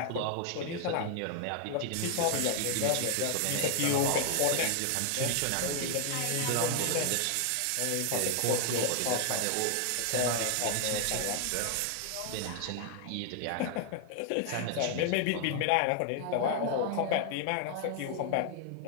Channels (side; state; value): both; different; correlation 0.00